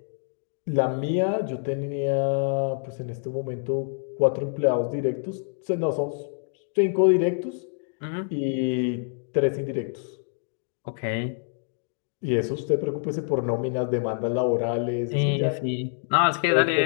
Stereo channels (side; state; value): right; silent; digital silence